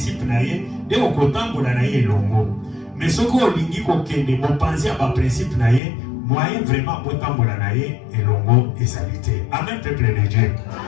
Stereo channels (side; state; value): right; drops out; at 5.8 s